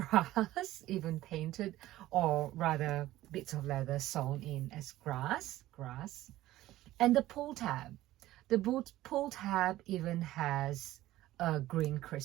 even painted, or rather bits of leather sewn in as grass. And the pull tab, the pull tab even has a green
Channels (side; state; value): left; quieter; 15.5 dB